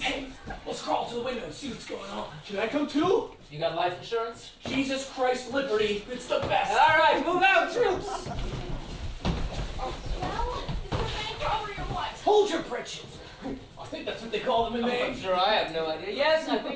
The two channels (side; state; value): both; identical; correlation 1.00